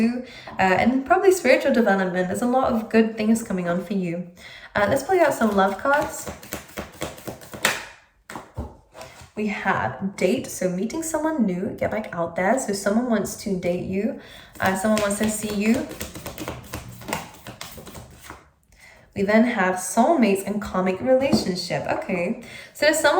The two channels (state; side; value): identical; both; correlation 1.00